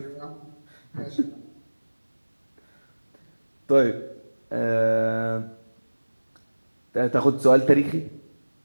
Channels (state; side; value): inverted; both; correlation -1.00